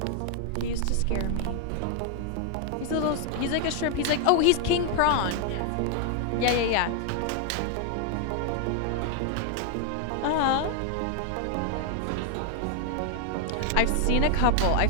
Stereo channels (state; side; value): different; both; correlation 0.00